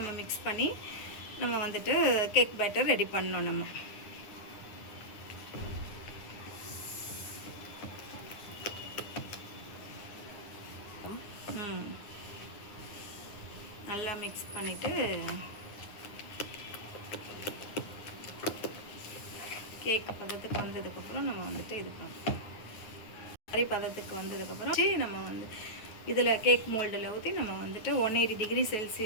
மிக்ஸ் பண்ணி நம்ம வந்துட்டு கேக் பேட்டர் ரெடி பண்ணோம். நம்ம நல்லா மிக்ஸ் பண்ணிவிட்டு கேக் பதத்துக்கு வந்ததுக்கப்புறம் நம்ம வந்துட்டு இது பண்ணோம். மாதிரி பதத்துக்கு வந்ததுக்கப்புறம் நம்ம வந்து இதில் கேக் மோல்டில் ஊற்றி நம்ம வந்துட்டு 180 டிகிரி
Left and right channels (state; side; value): late; right; 9.7 ms